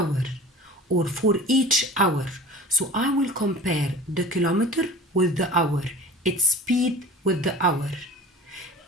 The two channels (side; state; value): both; normal; correlation 0.39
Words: or for each hour. So I will compare the kilometer with the hour, its speed with the hour.